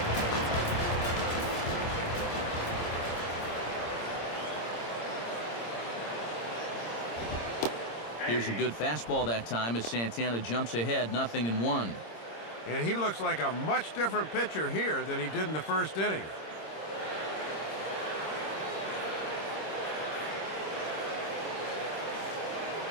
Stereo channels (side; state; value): right; late; 26 ms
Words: Here's a good fastball that time as Santana jumps ahead, 0-1. And he looks like a much different pitcher here than he did in the first inning.